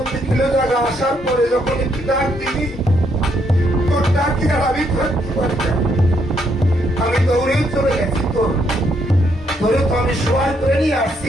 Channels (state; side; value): normal; both; correlation 0.74